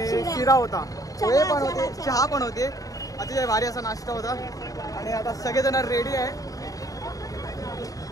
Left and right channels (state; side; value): late; right; 0.17 ms